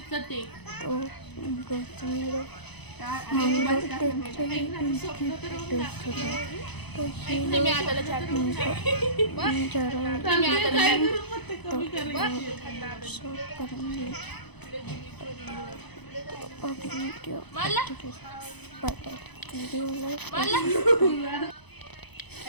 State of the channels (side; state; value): right; late; 0.99 ms